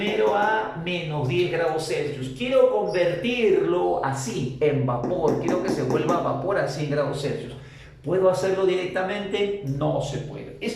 a menos 10 grados Celsius. Quiero convertirlo así, en vapor. Quiero que se vuelva vapor a 100 grados Celsius. ¿Puedo hacerlo directamente? No se puede.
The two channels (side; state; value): both; identical; correlation 1.00